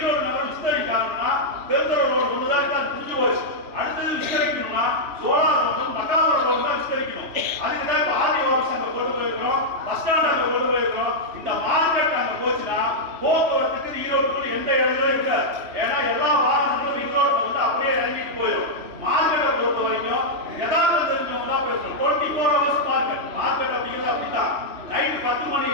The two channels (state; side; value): late; left; 3.0 ms